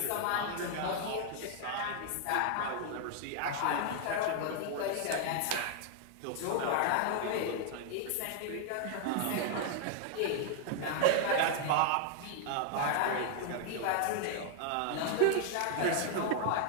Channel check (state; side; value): different; both; correlation 0.00